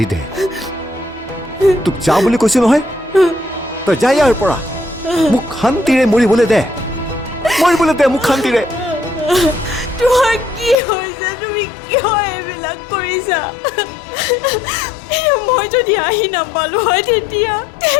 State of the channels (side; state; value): right; drops out; at 10.8 s